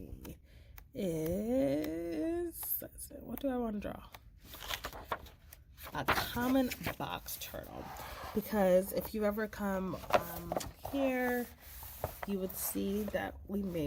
what do I want to draw? A common box turtle, because if you ever come here, you would see that we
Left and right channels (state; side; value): identical; both; correlation 1.00